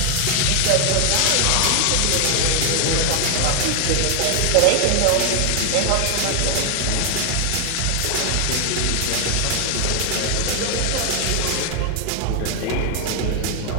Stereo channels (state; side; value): different; both; correlation 0.00